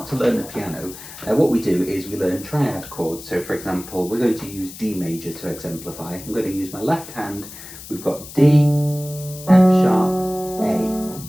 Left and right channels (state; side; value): noise; left; hiss, 14 dB below the sound